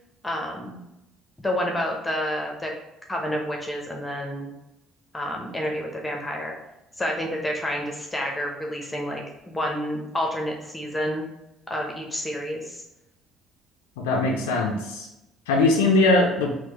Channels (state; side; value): normal; both; correlation 0.49